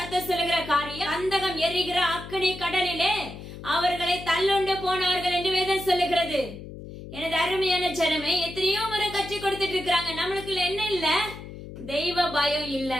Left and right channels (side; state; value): left; noise; hum, 13 dB below the sound